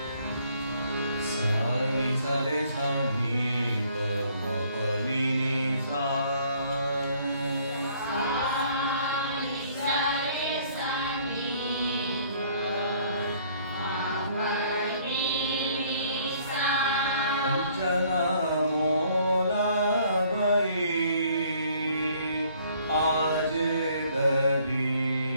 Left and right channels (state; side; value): inverted; both; correlation -0.61